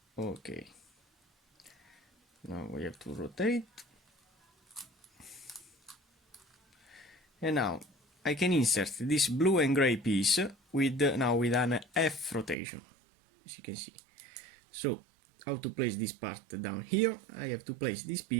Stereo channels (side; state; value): left; drops out; at 12.6 s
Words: Okay. Now we have to rotate. And now I can insert this blue and gray piece with now with an F rotation, as you can see. So how to place this part down here? I have to place this